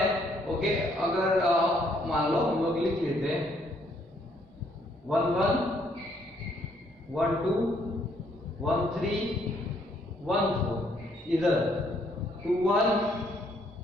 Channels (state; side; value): normal; both; correlation 0.68